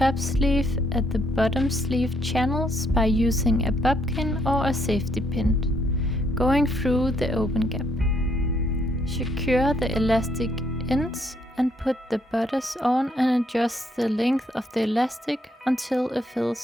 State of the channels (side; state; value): both; normal; correlation 0.72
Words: sleeve at the bottom sleeve channels by using a bobkin or a safety pin, going through the open gap. Secure the elastic ends and put the bodice on and adjust the length of the elastic until it